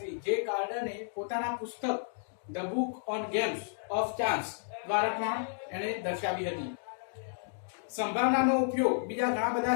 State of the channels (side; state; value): right; silent; digital silence